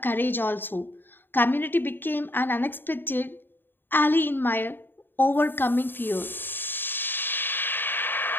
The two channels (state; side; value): late; right; 0.096 ms